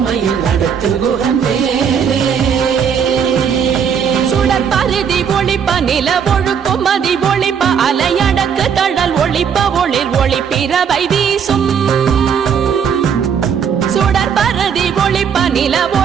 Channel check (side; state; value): left; quieter; 7.3 dB